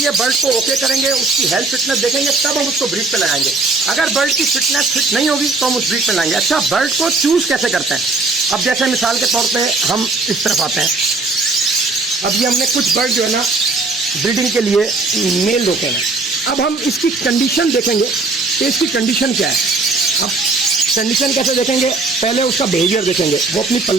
बर्ड को ओके करेंगे, उसकी हेल्थ फिटनेस देखेंगे, तब हम उसको ब्रीड पे लगाएंगे। अगर बर्ड की फिटनेस फिट नहीं होगी तो हम उस ब्रीड पे लगाएंगे। अच्छा, बर्ड को चूज कैसे करते हैं? अब जैसे मिसाल के तौर पे हम इस तरफ आते हैं, अब ये हमने कुछ बर्ड जो है ना ब्रीडिंग के लिए मेल रोके हैं। अब हम इसकी कंडीशन देखेंगे कि इसकी कंडीशन क्या है। अब कंडीशन कैसे देखेंगे? पहले उसका बिहेवियर देखेंगे, वो अपनी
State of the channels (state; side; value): quieter; left; 3.6 dB